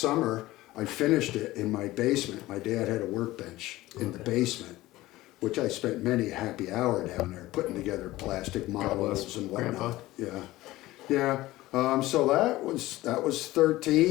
I finished it in my basement. My dad had a workbench in the basement, which I spent many a happy hour down there putting together plastic models and whatnot. Yeah. So that was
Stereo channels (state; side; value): quieter; right; 17.5 dB